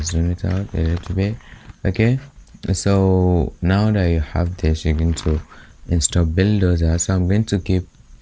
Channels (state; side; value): identical; both; correlation 1.00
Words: zoom it out a little bit. Okay, so now that you have this, you're going to install Buildozer. So I'm going to